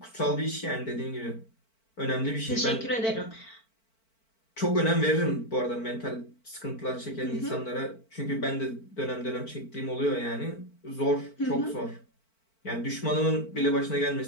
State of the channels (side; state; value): right; late; 4.5 ms